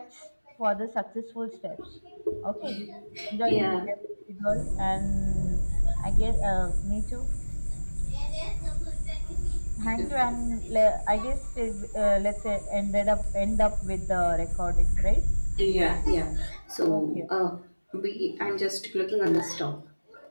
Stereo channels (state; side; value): inverted; both; correlation -1.00